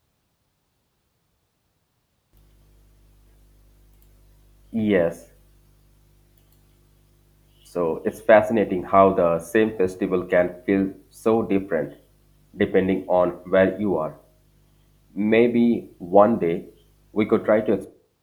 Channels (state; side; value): identical; both; correlation 1.00